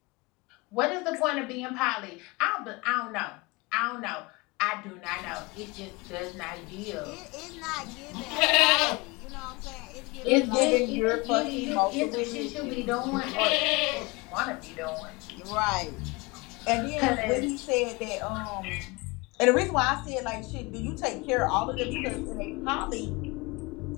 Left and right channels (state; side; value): quieter; right; 25.6 dB